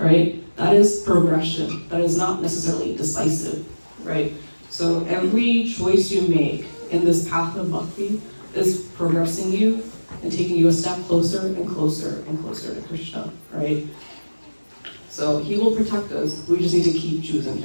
That is progression. That is not necessarily decisive, right? So every choice you make in this path of bhakti is progressing you and taking you a step closer and closer and closer to Krishna, right? So he will protect us. We just need to keep choosing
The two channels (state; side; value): inverted; both; correlation -1.00